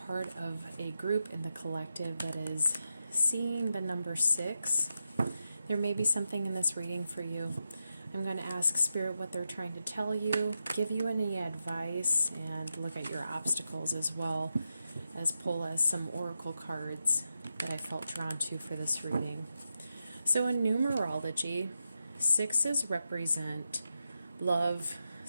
of a group in the collective that is seeing the number 6, there may be something in this reading for you. I'm going to ask Spirit what they're trying to tell you, give you any advice, and look at your obstacles as well as pull as some oracle cards that I felt drawn to for this reading. So in numerology, 6's represent love,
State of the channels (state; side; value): inverted; both; correlation -0.87